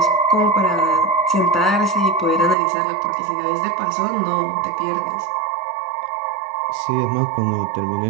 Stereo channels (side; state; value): left; drops out; at 2.6 s